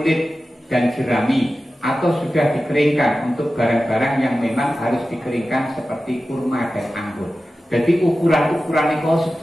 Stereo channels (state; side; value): normal; both; correlation 0.94